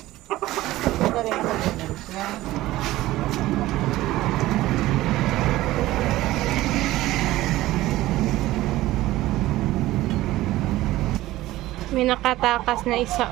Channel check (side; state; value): left; quieter; 16.6 dB